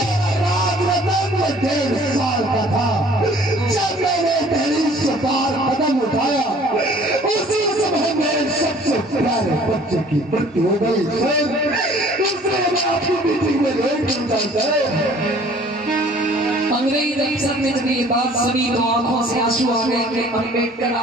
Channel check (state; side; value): normal; both; correlation 0.53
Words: Rajratan 1.5 साल का था जब मैंने पहली से बार कदम उठाया, उसी समय मेरे सबसे प्यारे बच्चे की मृत्यु हो गई सर। इसलिए मैं आपकी मीटिंग में लेट करता सर। अंग्रेज अफसर ने जब ये बात सुनी तो आंखों से आंसू आ गए कि अम्बेडकर